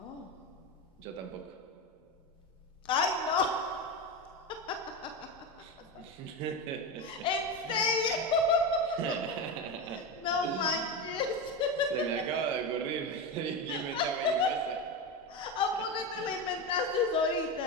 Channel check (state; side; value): normal; both; correlation 0.18